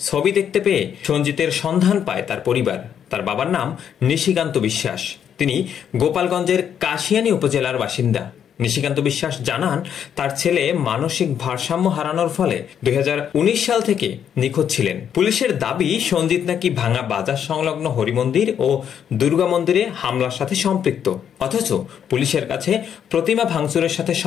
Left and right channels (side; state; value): right; quieter; 8.7 dB